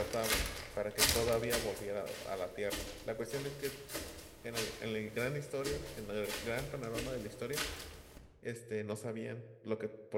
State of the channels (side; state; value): both; identical; correlation 1.00